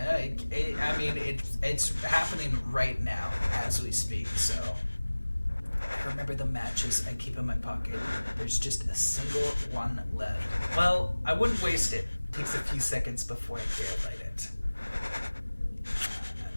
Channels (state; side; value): inverted; both; correlation -1.00